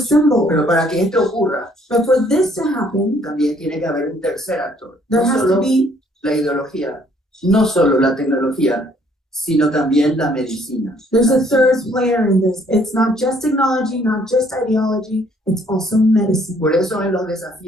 Pero para que esto ocurra, But for this to happen, también tiene que haber un tercer actor. there No has solo to be la ideología, no solo la tecnología, sino también la medicina. there's a third player in this. It's not just technology, not just ideology, it's also medicine. Por eso en los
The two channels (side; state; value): both; normal; correlation 0.63